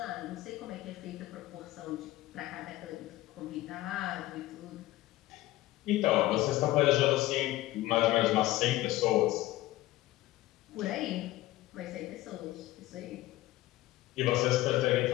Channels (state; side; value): quieter; right; 16.7 dB